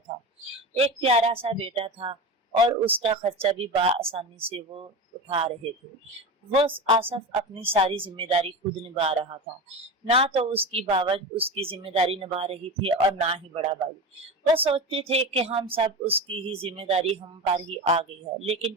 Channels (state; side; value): normal; both; correlation 0.24